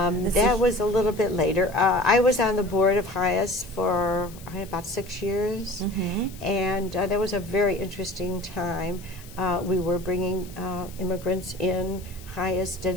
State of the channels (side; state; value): left; noise; hiss, 20 dB below the sound